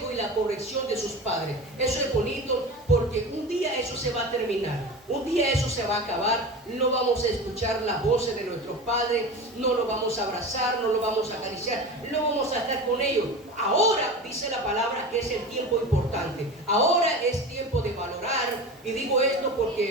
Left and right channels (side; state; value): both; normal; correlation 0.30